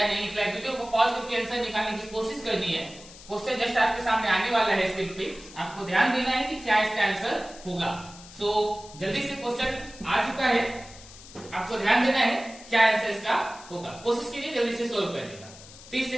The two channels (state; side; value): noise; left; hiss, 18 dB below the sound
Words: नहीं निकला है। वीडियो को पॉज करके आंसर निकालने की कोशिश करनी है। क्वेश्चन जस्ट आपके सामने आने वाला है स्क्रीन पे, आपको ध्यान देना है कि क्या इसका आंसर होगा। सो जल्दी से क्वेश्चन आ चुका है, आपको ध्यान देना है क्या आंसर इसका होगा। कोशिश कीजिए जल्दी से सोल्व करने का। 30